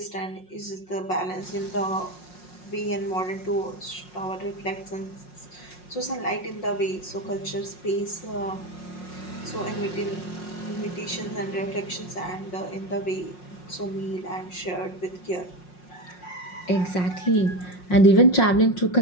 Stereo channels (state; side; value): late; right; 5.5 ms